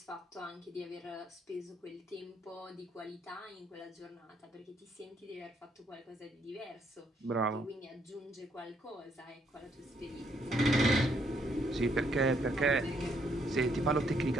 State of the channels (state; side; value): normal; both; correlation 0.71